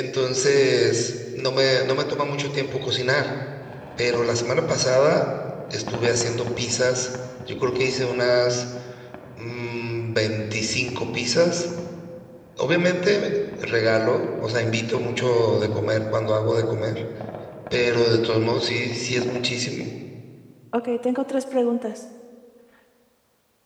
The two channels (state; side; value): identical; both; correlation 1.00